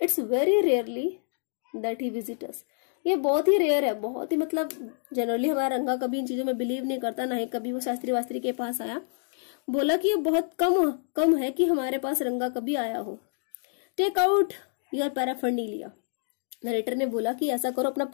very rarely that he visits us. ये बहुत ही रेयर है, बहुत ही मतलब जनरली हमारा रंगा कभी इन चीजों में बिलीव नहीं करता, ना ही कभी वो शास्त्री वास्त्री के पास आया। बोला कि ये बहुत कम है कि हमारे पास रंगा कभी आया हो। Take out your paraphernalia. Narrator ने बोला कि ऐसा करो, अपना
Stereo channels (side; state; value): right; silent; digital silence